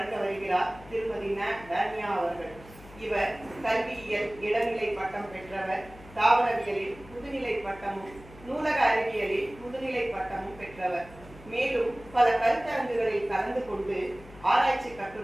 வருகிறார் திருமதி ந டானியா அவர்கள். இவர் கல்வியியல் இளநிலை பட்டம் பெற்றவர், தாவரவியலில் முதுநிலை பட்டமும் நூலக அறிவியலில் முதுநிலை பட்டமும் பெற்றவர். மேலும் பல கருத்தரங்குகளில் கலந்து கொண்டு ஆராய்ச்சி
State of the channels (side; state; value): left; noise; hum, 20 dB below the sound